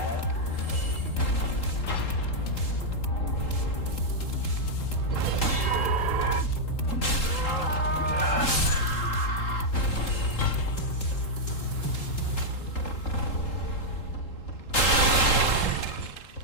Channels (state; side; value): late; right; 3.8 ms